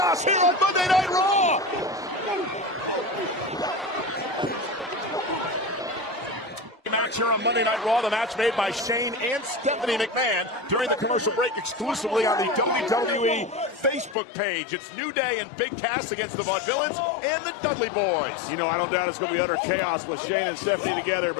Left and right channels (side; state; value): right; drops out; at 14.2 s